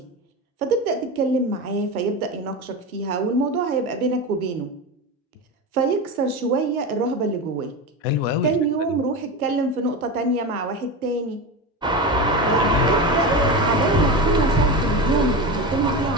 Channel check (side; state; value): both; normal; correlation 0.22